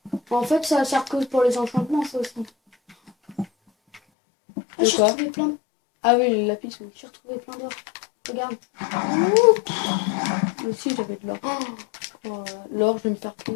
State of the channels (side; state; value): right; drops out; at 4.0 s